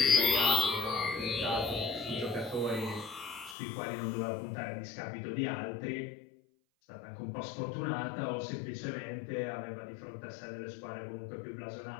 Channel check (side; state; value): right; drops out; at 3.6 s